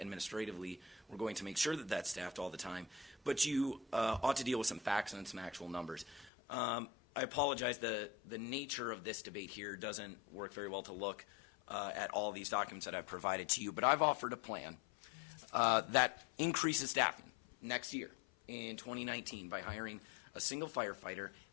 we're going to make sure that that's staffed all the time. But you ought to deal with some facts and some actual numbers. I apologize, the nature of this debate here doesn't work very well to look at all these documents that I've provided to you, but I've offered a plan that increases staffing next year in 2019 by hiring a single firefighter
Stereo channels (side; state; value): right; drops out; at 6.3 s